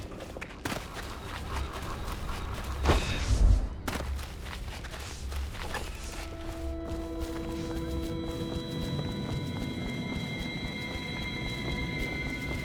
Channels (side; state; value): both; identical; correlation 1.00